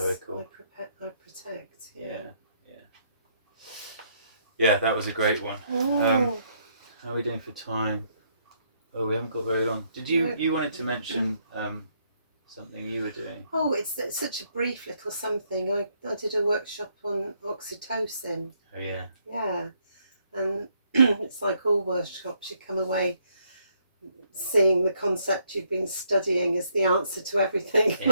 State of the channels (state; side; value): inverted; both; correlation -0.71